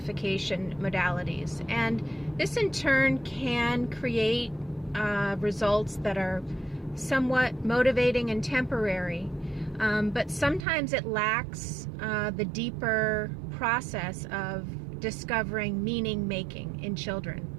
modalities, and this in turn can create results that are somewhat motivating and temporary, but sometimes it lacks the deeper process of discovering meaning making in children.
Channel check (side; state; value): left; drops out; at 10.7 s